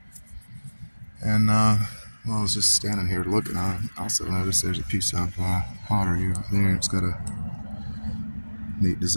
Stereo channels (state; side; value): inverted; both; correlation -1.00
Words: And while I was just standing here looking, I also noticed there's a piece of pottery right there. It's got a neat